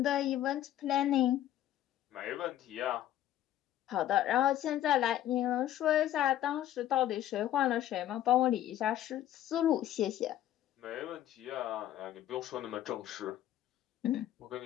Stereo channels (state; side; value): quieter; right; 12.4 dB